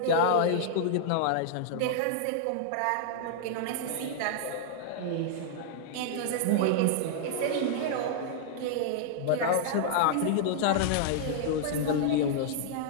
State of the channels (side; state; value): both; different; correlation -0.01